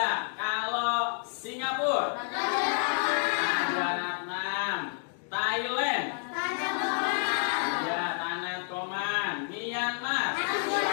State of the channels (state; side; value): silent; right; 58 dB below the other